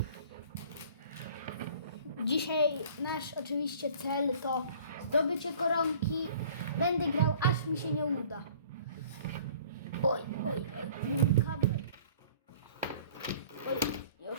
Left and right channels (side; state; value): both; inverted; correlation -0.51